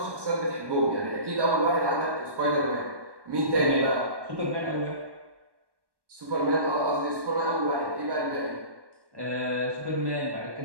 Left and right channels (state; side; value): late; left; 1.1 ms